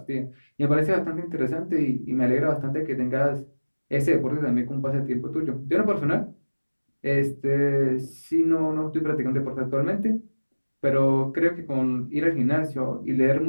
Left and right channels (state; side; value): inverted; both; correlation -1.00